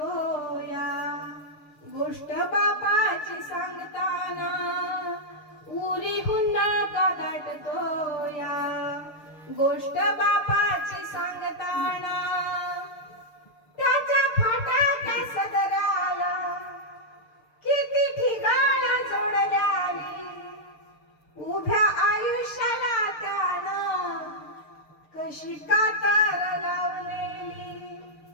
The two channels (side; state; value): right; late; 6.6 ms